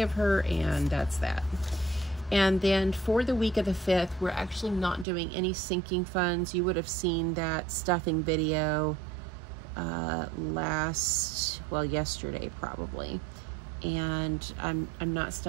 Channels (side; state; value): left; drops out; at 5.1 s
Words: her, and that's that. And then for the week of the 5th, we're actually not doing any sinking funds. You would have seen that stuffing video yesterday probably. And I'm not